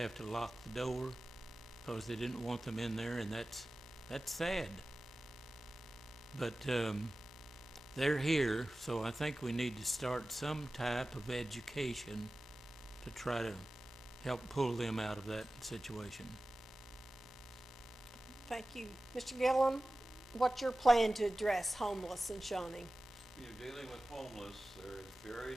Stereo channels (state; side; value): normal; both; correlation 0.96